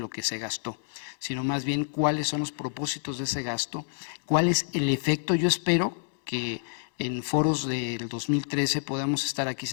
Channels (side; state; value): right; silent; digital silence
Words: que se gastó, sino más bien cuáles son los propósitos de ese gasto, cuál es el efecto. Yo espero que en foros del 2013 podamos estar aquí